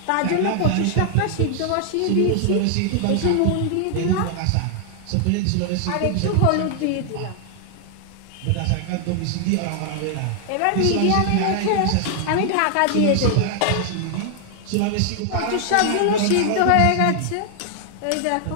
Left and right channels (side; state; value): both; different; correlation 0.00